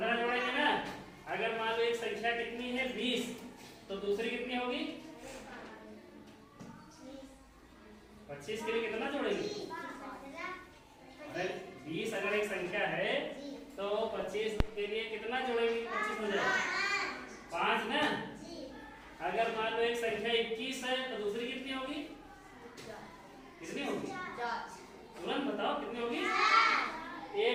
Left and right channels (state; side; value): identical; both; correlation 1.00